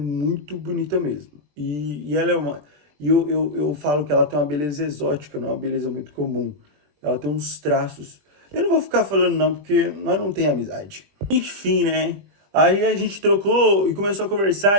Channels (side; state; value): left; late; 20 ms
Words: bonita mesmo. E ela é uma. E eu falo que ela tem uma beleza exótica, não é uma beleza muito comum. Ela tem uns traços. Eu não vou ficar falando não, porque nós não tem amizade. Enfim, né? Aí a gente trocou e começou a